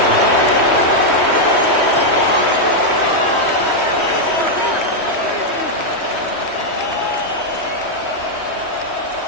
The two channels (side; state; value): right; late; 3.1 ms